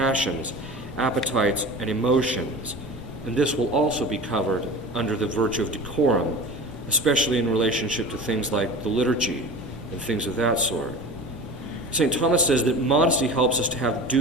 appetites, and emotions. And this will also be covered under the virtue of decorum, especially in relationship to things like the liturgy and things of that sort. St. Thomas says that modesty helps us to have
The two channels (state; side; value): noise; left; rumble, 19 dB below the sound